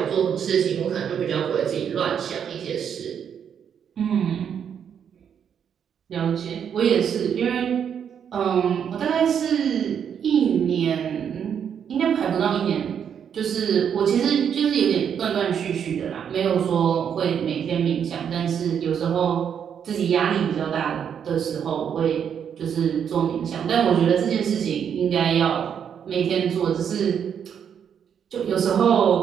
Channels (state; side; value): quieter; left; 8.1 dB